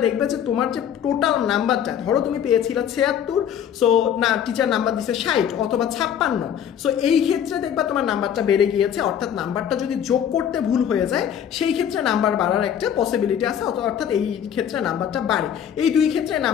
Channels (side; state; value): right; quieter; 9.1 dB